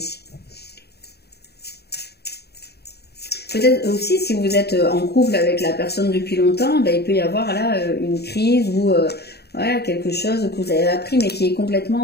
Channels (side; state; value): right; late; 0.47 ms